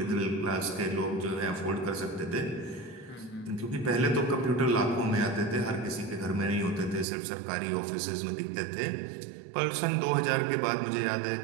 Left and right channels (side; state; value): left; drops out; at 7.1 s